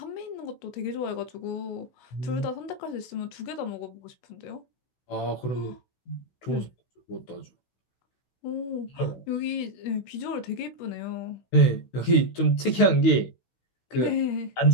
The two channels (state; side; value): late; right; 16 ms